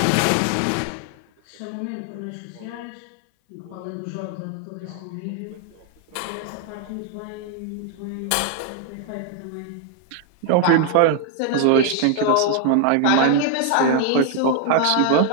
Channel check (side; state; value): both; different; correlation 0.00